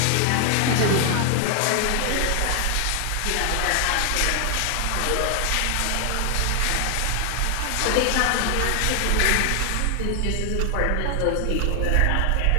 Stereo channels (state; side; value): different; both; correlation 0.00